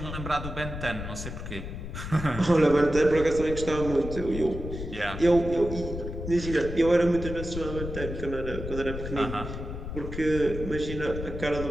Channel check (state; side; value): noise; left; rumble, 7 dB below the sound